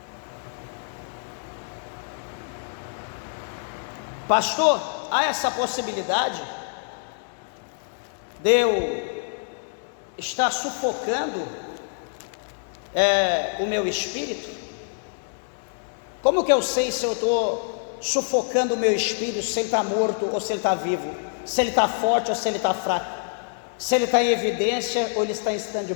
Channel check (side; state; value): right; silent; digital silence